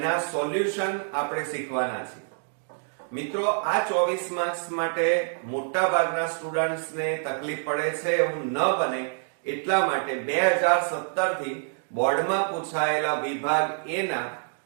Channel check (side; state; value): left; silent; digital silence